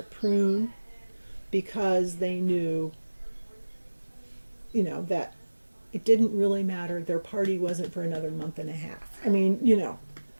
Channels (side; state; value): both; inverted; correlation -1.00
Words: prune, because they knew, that it didn't really matter. Their party wasn't for another month and a half. I mean,